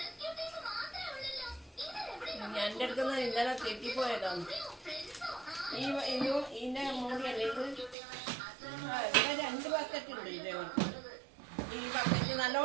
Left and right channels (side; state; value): left; drops out; at 8.0 s